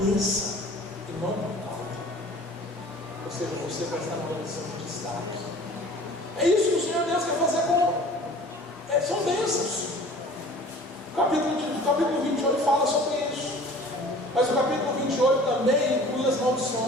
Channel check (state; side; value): normal; both; correlation 0.46